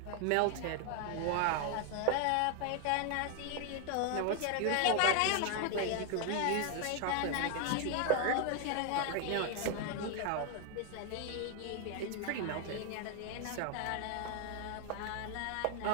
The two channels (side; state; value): both; different; correlation 0.01